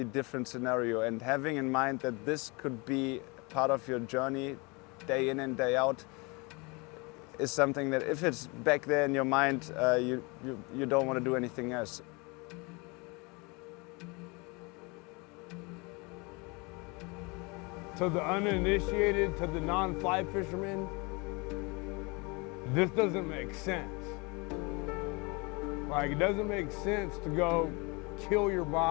different scenario. And having in mind that this could be part of your journey, day in and day out, is something that if it's back there in your mind, you don't want to do anything else. To the uninitiated, to the non-fly fishermen, this doesn't make sense. Like, it doesn't make sense to go kill your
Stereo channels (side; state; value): right; quieter; 28.3 dB